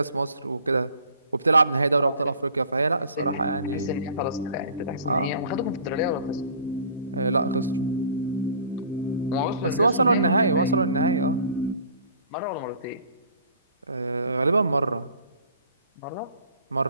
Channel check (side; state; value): both; inverted; correlation -0.50